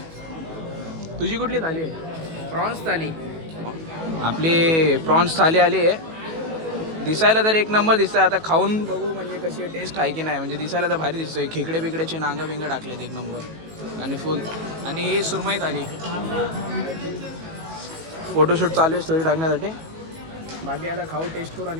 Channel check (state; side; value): late; left; 18 ms